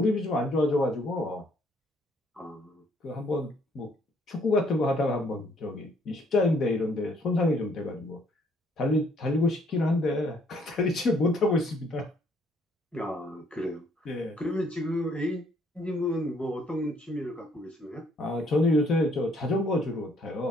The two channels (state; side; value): normal; both; correlation 0.65